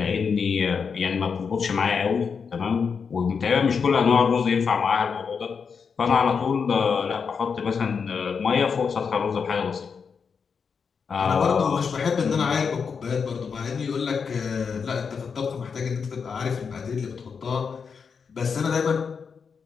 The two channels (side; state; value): right; quieter; 5.9 dB